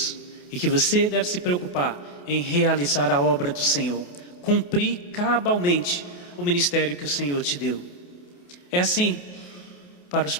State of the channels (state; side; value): late; right; 28 ms